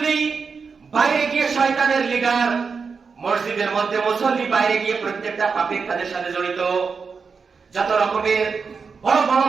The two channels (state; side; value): quieter; left; 5.3 dB